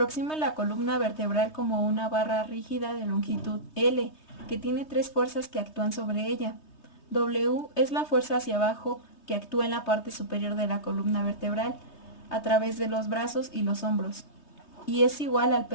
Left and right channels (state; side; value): late; right; 3.2 ms